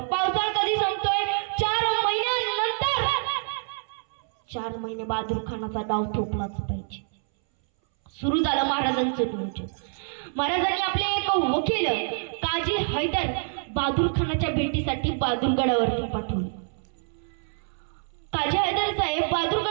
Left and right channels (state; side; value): silent; left; 61 dB below the other